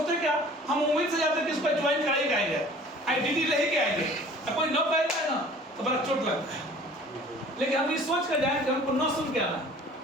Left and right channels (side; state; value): both; normal; correlation 0.48